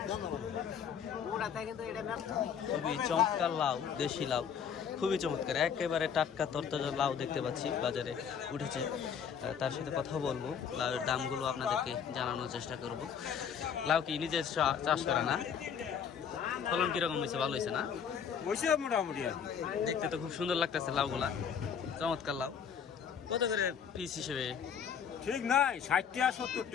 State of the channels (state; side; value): quieter; right; 7.5 dB